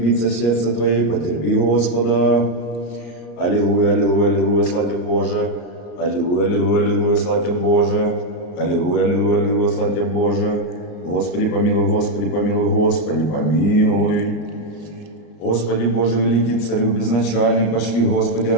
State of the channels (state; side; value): late; right; 34 ms